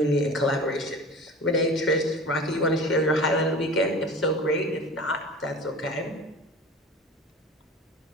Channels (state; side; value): normal; both; correlation 0.37